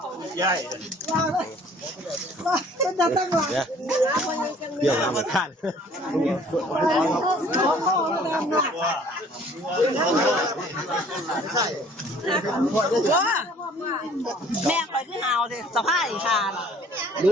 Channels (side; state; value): both; normal; correlation 0.54